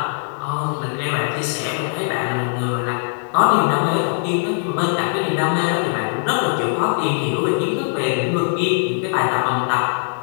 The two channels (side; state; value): right; silent; digital silence